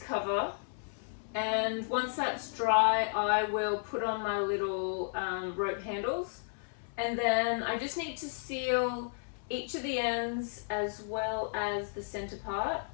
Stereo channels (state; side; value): silent; right; 56 dB below the other